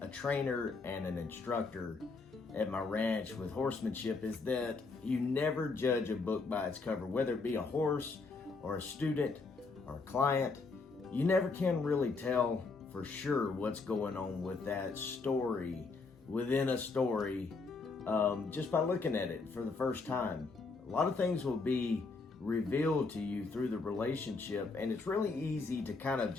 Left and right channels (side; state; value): right; quieter; 4.1 dB